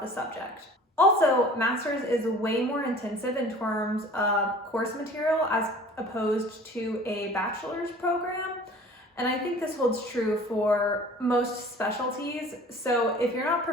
the subject. Also, master's is way more intensive in terms of course material as opposed to a bachelor's program. And I think this holds true for most specialties. So if you're not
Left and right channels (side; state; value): both; normal; correlation 0.46